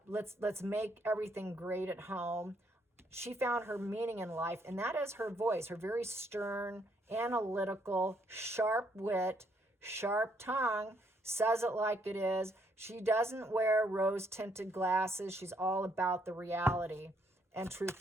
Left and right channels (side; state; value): both; normal; correlation 0.71